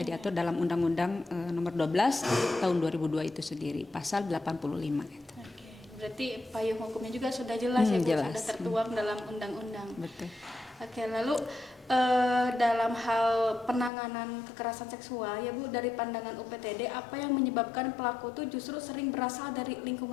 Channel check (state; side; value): drops out; right; at 13.9 s